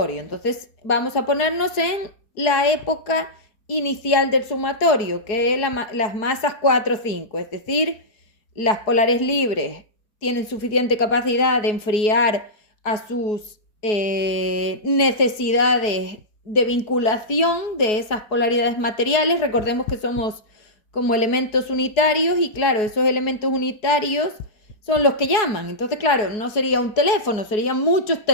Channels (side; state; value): right; late; 4.7 ms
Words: Entonces vamos a ponernos en la época inicial del sumatorio, que es las masas 4, 5, es decir, las polares libres tienen suficiente capacidad de enfriar a sus necesidades de vinculación de esas polaridades materiales. Recordemos que somos como elementos unitarios y claro, esos elementos unitarios son los que llaman. Entonces, claro, no sería un teléfono, serían muchos